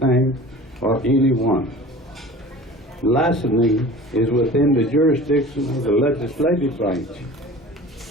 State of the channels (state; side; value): normal; both; correlation 0.41